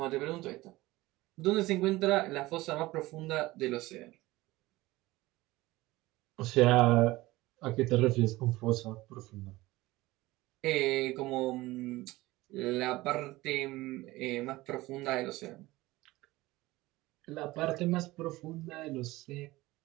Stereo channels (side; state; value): left; quieter; 19.0 dB